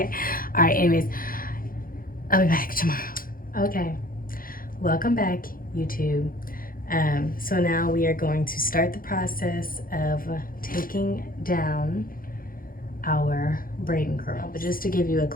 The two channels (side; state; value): right; late; 0.41 ms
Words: All right, anyways, I'll be back tomorrow. Okay, welcome back, YouTube. So now we are going to start the process of taking down our braid and curl. But just to give you a